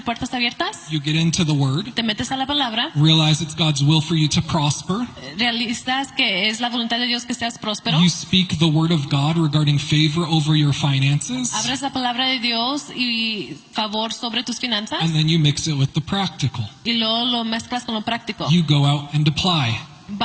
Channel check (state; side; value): identical; both; correlation 1.00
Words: puertas abiertas, you get into the word, te metes a la palabra, realize it's God's will for you to prosper. realizas que es la voluntad de Dios que seas próspero, You speak the word of God regarding favor over your finances, abres la palabra de Dios y favor sobre tus finanzas, and then you mix it with the practical. y luego lo mezclas con lo práctico. You go out and apply.